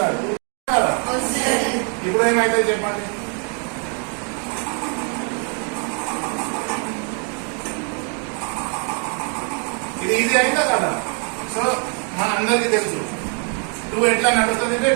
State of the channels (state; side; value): quieter; left; 39.9 dB